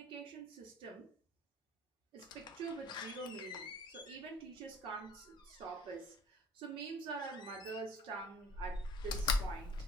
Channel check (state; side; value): normal; both; correlation 0.49